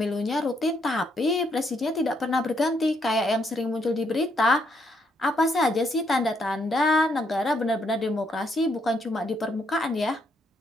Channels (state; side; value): normal; both; correlation 0.74